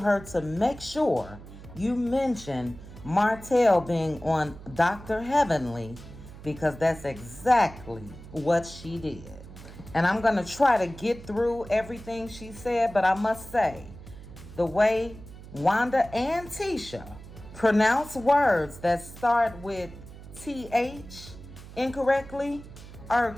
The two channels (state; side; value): noise; right; hum, 16 dB below the sound